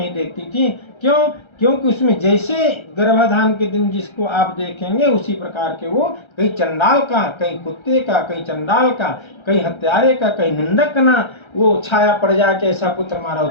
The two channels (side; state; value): right; late; 1.3 ms